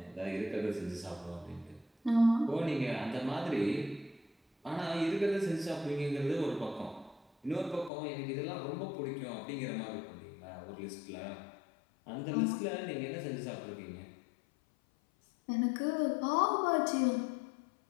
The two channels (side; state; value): right; drops out; at 7.9 s